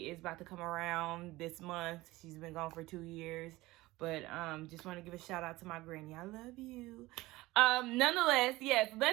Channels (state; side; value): quieter; left; 19.3 dB